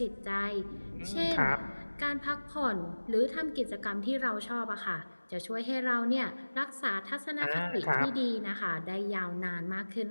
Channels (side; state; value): both; inverted; correlation -1.00